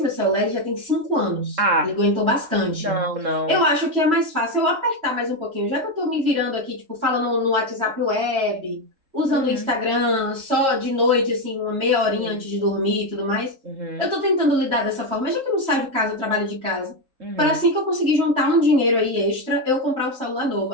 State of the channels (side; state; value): left; late; 3.7 ms